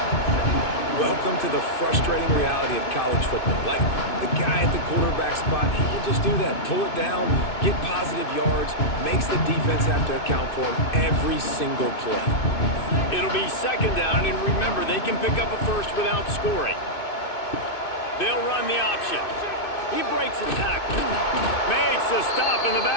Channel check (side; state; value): right; late; 2.6 ms